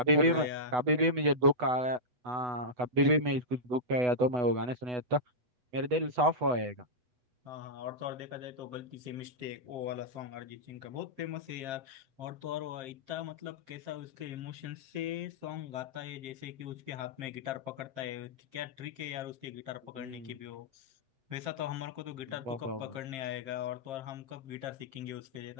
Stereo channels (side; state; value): left; late; 8.1 ms